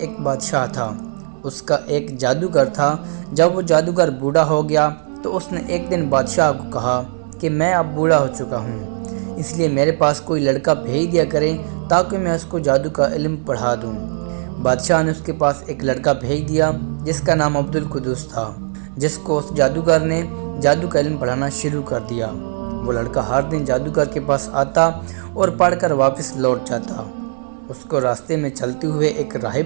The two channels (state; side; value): silent; left; digital silence